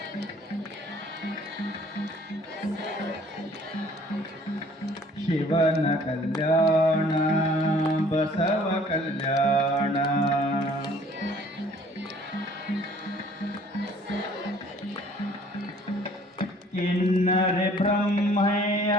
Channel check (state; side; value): normal; both; correlation 0.55